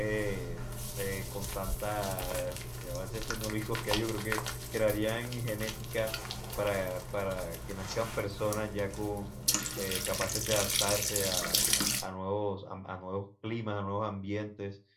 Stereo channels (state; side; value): identical; both; correlation 1.00